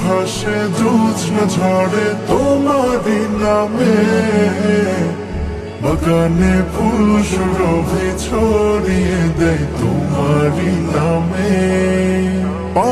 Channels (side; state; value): both; identical; correlation 1.00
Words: হাসে, জ্যোৎস্না ঝরে তোমারই নামে, বাগানে ফুল সুরভি ছড়িয়ে দেয় তোমারই নামে।